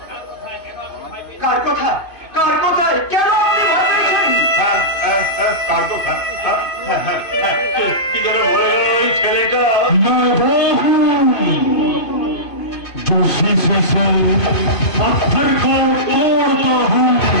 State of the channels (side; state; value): right; late; 2.5 ms